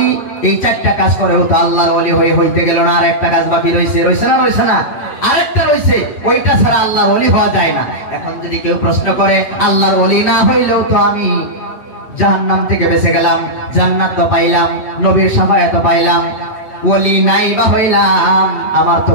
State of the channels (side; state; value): right; late; 8.4 ms